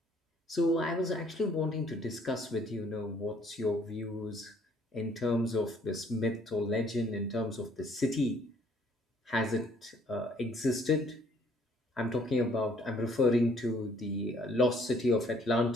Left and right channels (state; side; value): normal; both; correlation 0.62